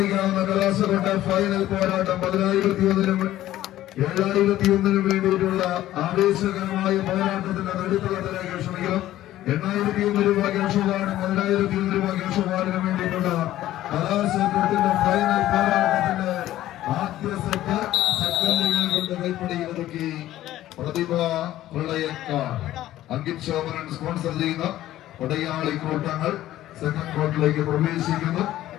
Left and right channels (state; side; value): quieter; right; 14.1 dB